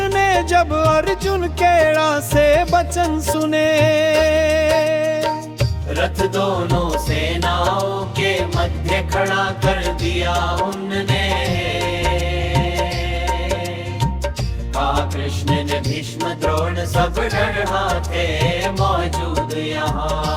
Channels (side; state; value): both; identical; correlation 1.00